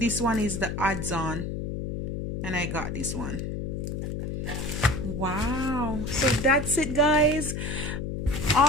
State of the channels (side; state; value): left; noise; hum, 4 dB below the sound